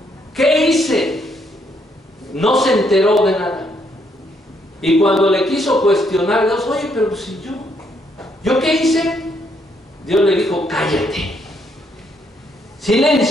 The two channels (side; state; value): both; normal; correlation 0.73